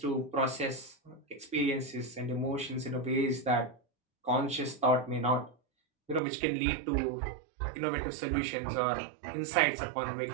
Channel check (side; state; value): left; drops out; at 6.2 s